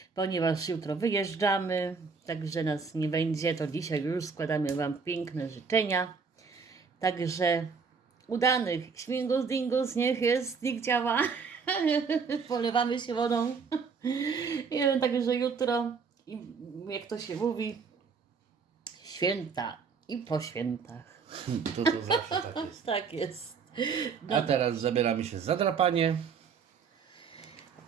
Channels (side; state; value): left; quieter; 5.4 dB